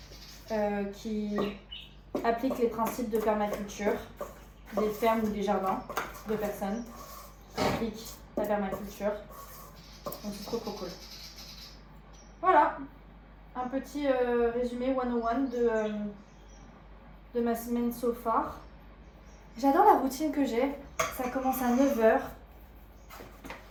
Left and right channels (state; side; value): identical; both; correlation 1.00